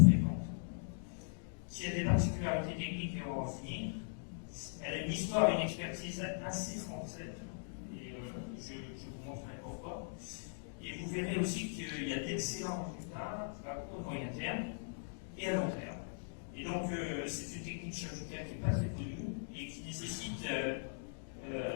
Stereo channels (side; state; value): right; silent; digital silence